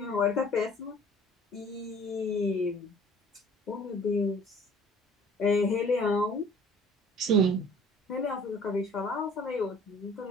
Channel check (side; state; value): both; normal; correlation 0.51